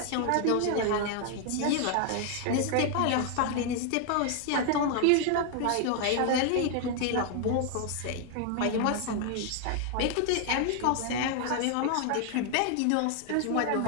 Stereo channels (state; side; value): different; both; correlation 0.00